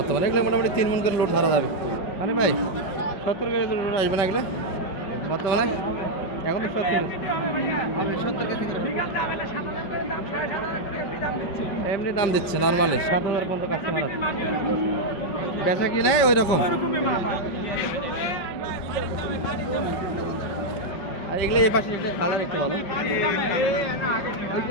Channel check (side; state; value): right; late; 5.4 ms